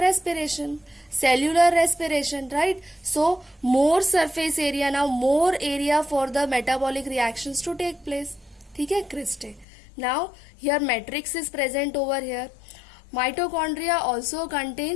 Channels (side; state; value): right; drops out; at 9.7 s